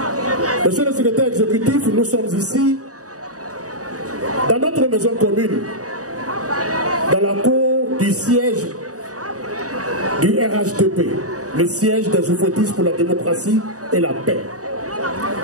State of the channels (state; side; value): late; left; 0.66 ms